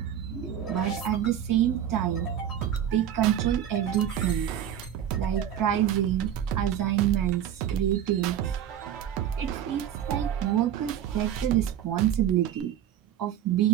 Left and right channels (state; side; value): quieter; left; 10.1 dB